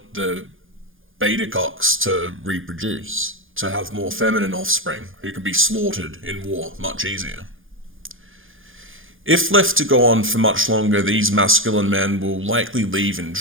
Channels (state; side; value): late; left; 0.59 ms